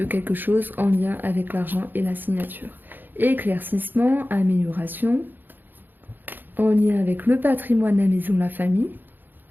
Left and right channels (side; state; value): left; late; 0.091 ms